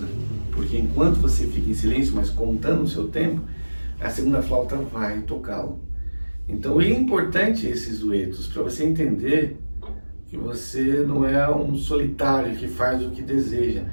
Porque enquanto você fica em silêncio, mas contando o seu tempo, a segunda flauta vai tocá-lo. Então é importante esses duetos para você entender que você não é um solitário que faz o que deseja.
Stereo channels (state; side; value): inverted; both; correlation -1.00